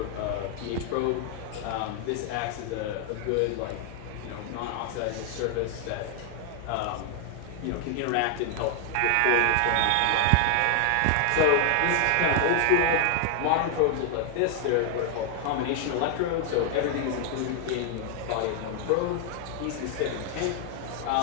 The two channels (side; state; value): both; different; correlation 0.00